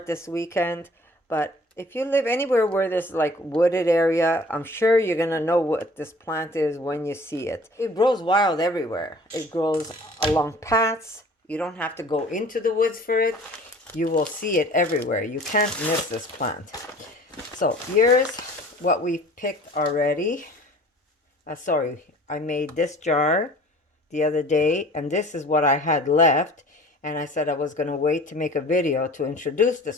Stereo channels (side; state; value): both; normal; correlation 0.48